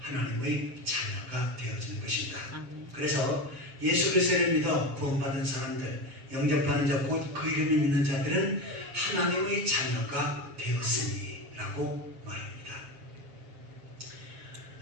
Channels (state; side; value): late; left; 7.1 ms